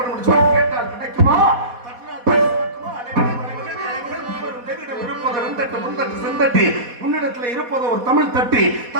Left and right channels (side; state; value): left; late; 4.2 ms